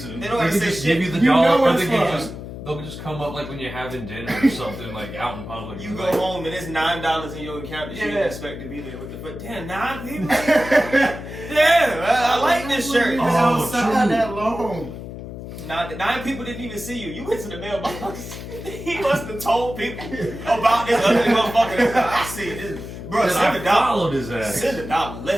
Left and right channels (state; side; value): noise; left; hum, 10 dB below the sound